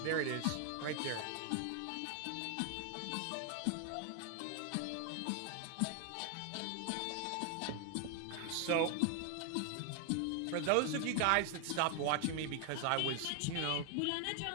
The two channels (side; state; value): both; different; correlation 0.00